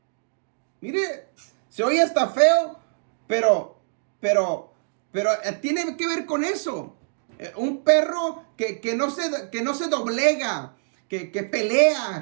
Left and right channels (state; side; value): silent; left; digital silence